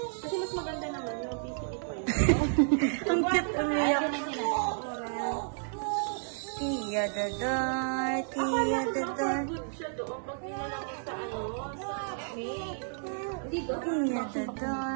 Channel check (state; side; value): silent; left; 56 dB below the other